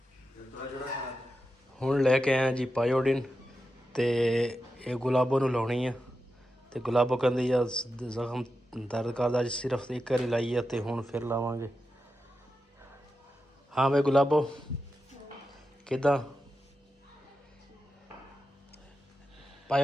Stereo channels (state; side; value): normal; both; correlation 0.90